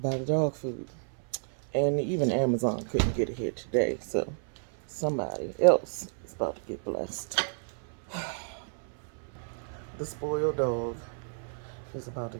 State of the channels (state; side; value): silent; left; 57 dB below the other